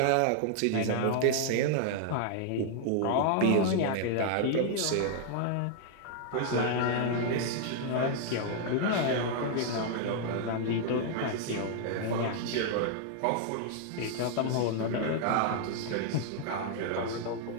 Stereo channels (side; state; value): both; different; correlation 0.00